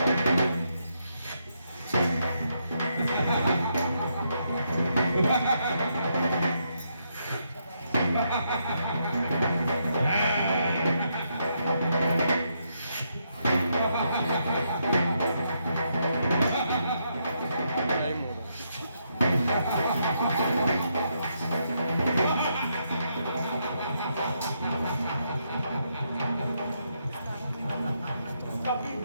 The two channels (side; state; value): both; inverted; correlation -0.78